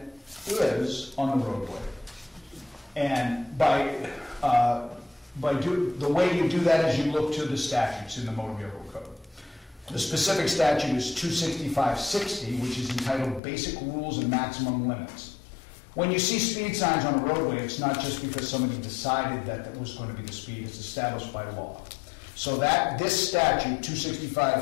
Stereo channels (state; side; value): drops out; right; at 13.4 s